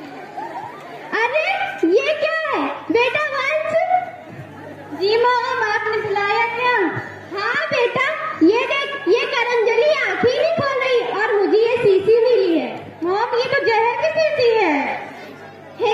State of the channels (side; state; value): both; identical; correlation 1.00